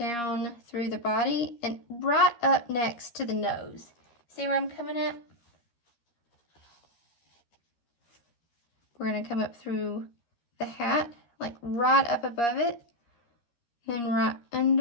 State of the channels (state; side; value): late; right; 13 ms